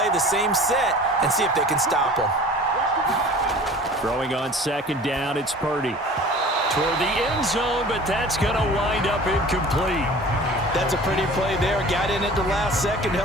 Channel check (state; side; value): normal; both; correlation 0.43